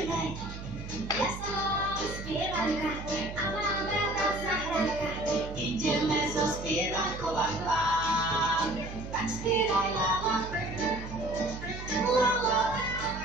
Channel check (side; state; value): right; noise; hum, 10 dB below the sound